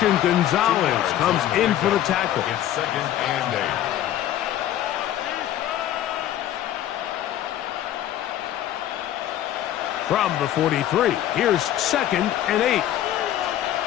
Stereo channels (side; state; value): right; quieter; 12.2 dB